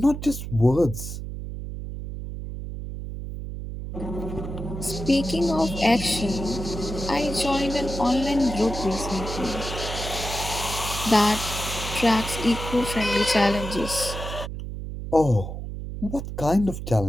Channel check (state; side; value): noise; right; hum, 7 dB below the sound